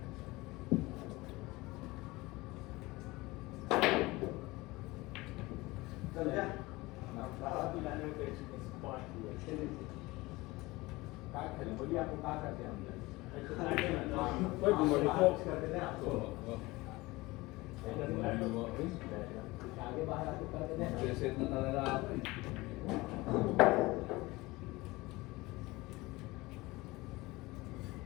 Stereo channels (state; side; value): quieter; right; 21.3 dB